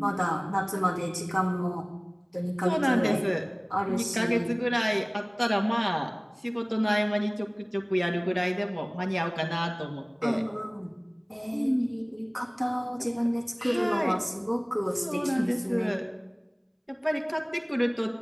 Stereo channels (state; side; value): identical; both; correlation 1.00